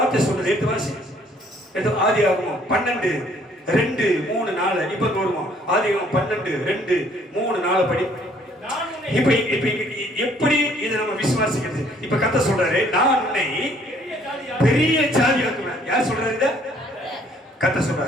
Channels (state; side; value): normal; both; correlation 0.62